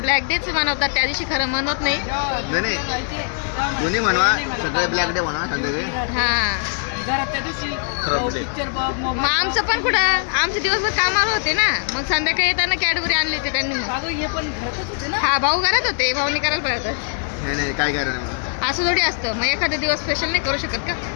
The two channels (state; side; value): silent; right; 60 dB below the other